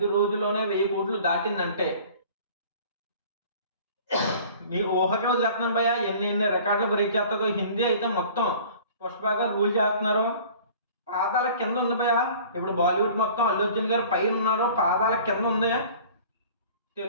రోజుల్లోనే 1000 కోట్లు దాటిందంటే మీ ఊహకే వదిలేస్తున్నాను భయ్య, ఎన్ని రికార్డులు బ్రేక్ చేస్తుందో. హిందీ అయితే మొత్తం పుష్ప గారు రూల్ చేస్తున్నారు. పాదాల కింద ఉంది భయ్య. ఇప్పుడు బాలీవుడ్ మొత్తం అల్లు అర్జున్ గారు పైన ఉన్నారు, పాదాల కింద ఉంది.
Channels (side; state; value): both; inverted; correlation -0.47